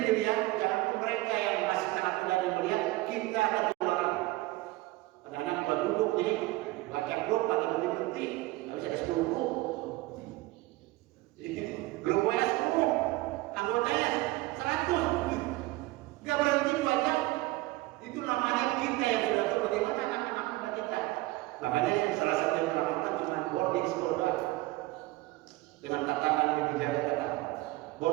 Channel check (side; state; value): left; quieter; 19.7 dB